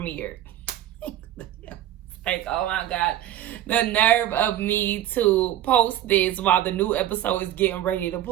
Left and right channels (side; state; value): left; quieter; 12.3 dB